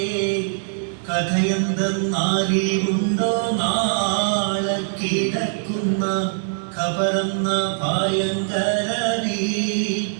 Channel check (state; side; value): silent; left; digital silence